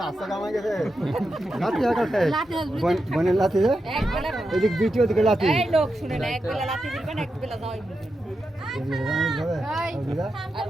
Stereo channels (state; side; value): normal; both; correlation 0.88